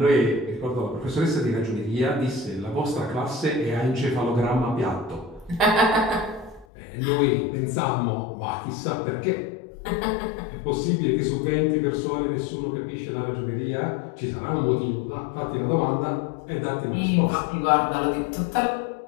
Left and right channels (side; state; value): right; drops out; at 6.7 s